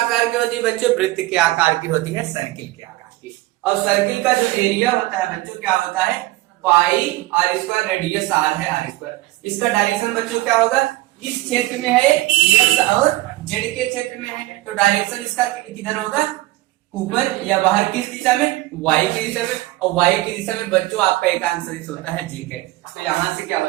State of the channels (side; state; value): left; quieter; 18.4 dB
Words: की होती है बच्चों, वृत्त के आकार की होती है, सर्किल के आकार की। और सर्किल का जो एरिया होता है बच्चों क्या होता है पाई आर स्क्वायर, रेडियस आर है आर स्क्वायर। इसका डायरेक्शन बच्चों क्या होगा, इस क्षेत्र में है एक्स और जेड के क्षेत्र में है, तो डायरेक्शन इसका किधर होगा, ऊपर या बाहर, किस दिशा में, वाई की दिशा में। और वाई की दिशा में बच्चों आपका एक आंसर होता है जे के, तो यहाँ से क्या